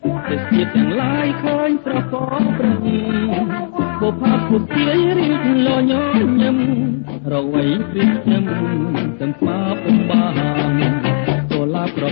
ទេសភាពទាំងឡាយឃើញស្រកប្រឹងបុព្វពុទាយរៀបលញញឹមរវៃព្រៀបខ្ញុំទាំងស្មាពុំបានចូលឡាប្រ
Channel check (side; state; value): right; silent; digital silence